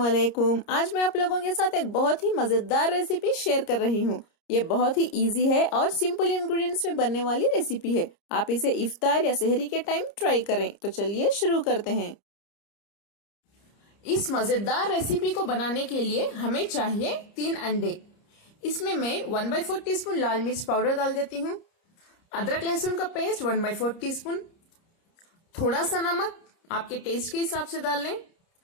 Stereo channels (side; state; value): right; late; 30 ms